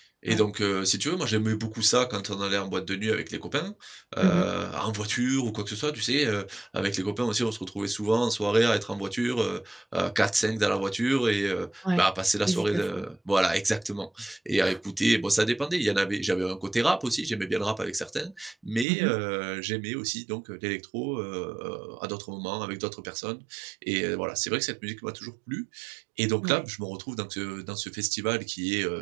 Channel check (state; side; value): drops out; left; at 18.9 s